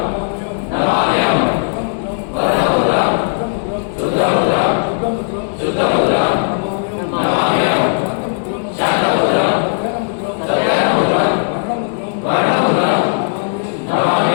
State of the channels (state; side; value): silent; right; 65 dB below the other